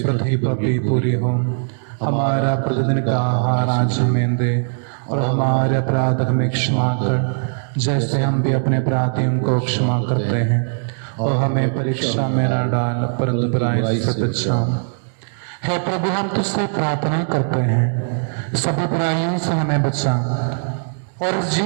पृथ्वी पर भी पूरी हो। हमारा प्रतिदिन का आहार आज हमें दे और हमारे अपराध हमें क्षमा कर जैसे हम भी अपने अपराधियों को क्षमा करते हैं, और हमें परीक्षा में न डाल परंतु बुराई से बचा। हे प्रभु, हम तुझसे प्रार्थना करते हैं सभी बुराइयों से हमें बचा और इस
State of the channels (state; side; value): silent; left; digital silence